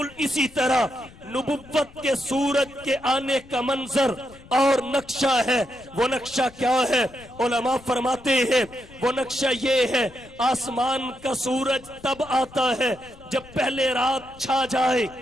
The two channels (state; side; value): noise; left; rumble, 22 dB below the sound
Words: اسی طرح نبوت کے سورج کے آنے کا منظر اور نقشہ ہے۔ وہ نقشہ کیا ہے؟ علماء فرماتے ہیں وہ نقشہ یہ ہے آسمان کا سورج تب آتا ہے جب پہلے رات چھا جائے،